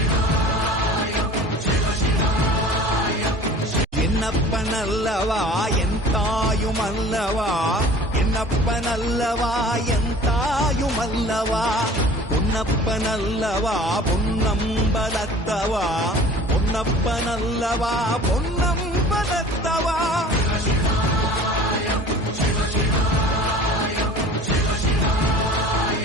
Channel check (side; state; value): both; normal; correlation 0.45